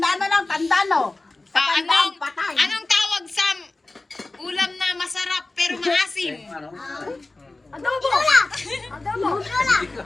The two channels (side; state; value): right; quieter; 3.1 dB